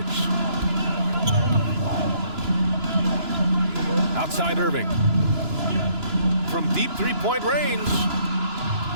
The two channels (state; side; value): late; left; 2.9 ms